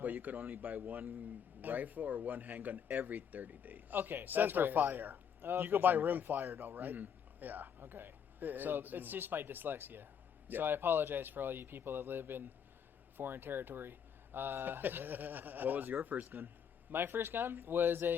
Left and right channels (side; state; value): right; quieter; 7.8 dB